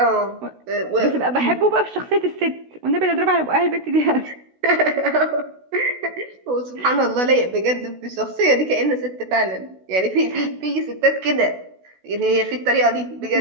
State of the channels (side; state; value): left; late; 16 ms